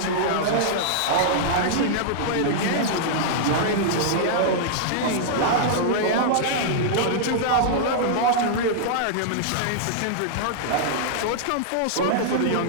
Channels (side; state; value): both; different; correlation -0.02